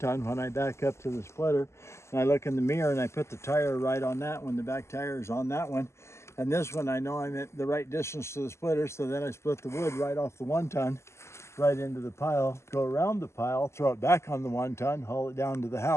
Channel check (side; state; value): right; late; 0.13 ms